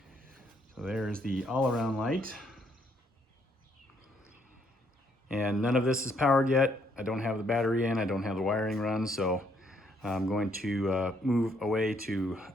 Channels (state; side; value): normal; both; correlation 0.70